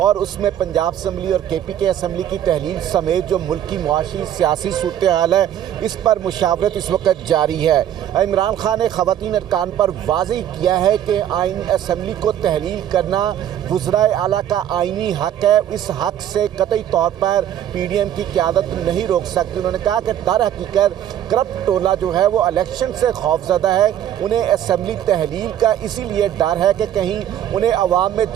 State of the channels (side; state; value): left; quieter; 10.8 dB